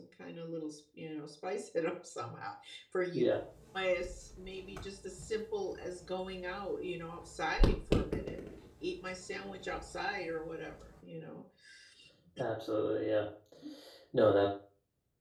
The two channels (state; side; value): identical; both; correlation 1.00